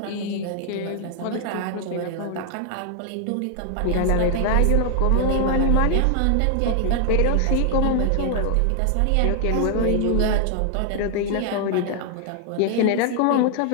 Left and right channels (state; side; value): different; both; correlation 0.00